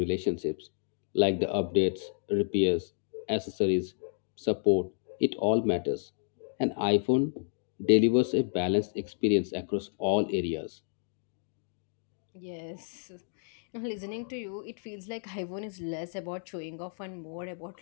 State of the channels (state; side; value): silent; right; digital silence